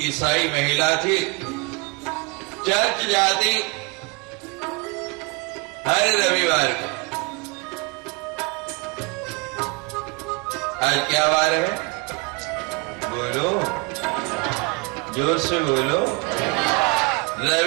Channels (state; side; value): quieter; left; 28.4 dB